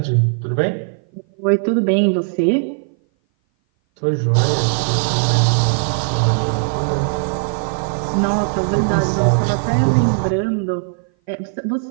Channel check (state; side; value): silent; left; 58 dB below the other